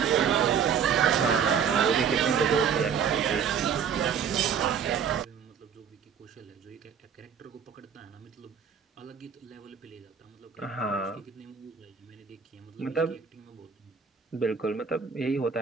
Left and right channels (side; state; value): left; quieter; 7.1 dB